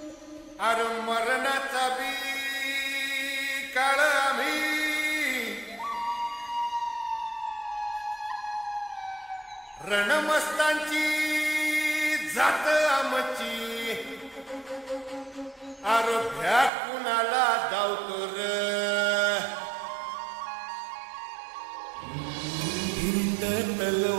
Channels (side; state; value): left; drops out; at 16.7 s